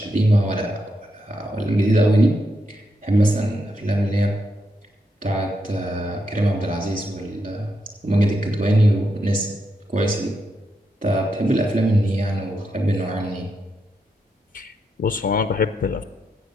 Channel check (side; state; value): both; normal; correlation 0.83